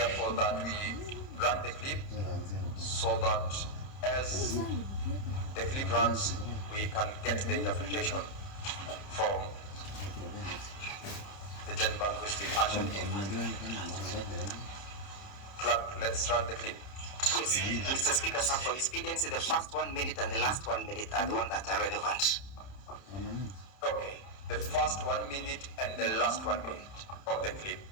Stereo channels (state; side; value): late; right; 30 ms